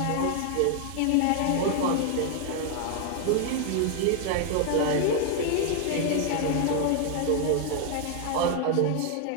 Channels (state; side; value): different; both; correlation 0.00